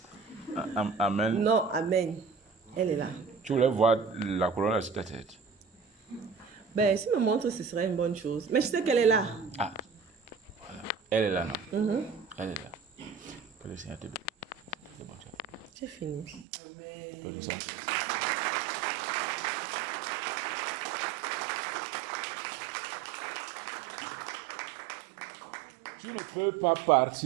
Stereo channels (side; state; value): left; drops out; at 16.4 s